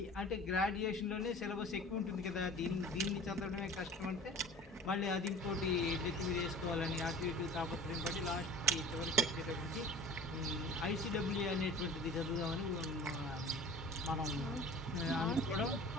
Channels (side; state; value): both; normal; correlation 0.41